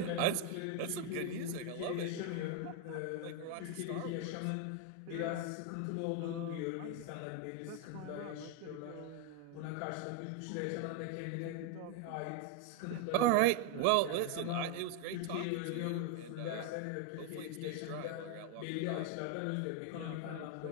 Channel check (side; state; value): both; different; correlation 0.01